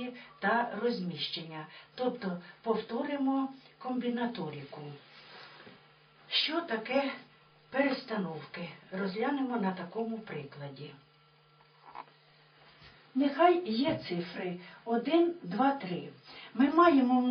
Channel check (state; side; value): identical; both; correlation 1.00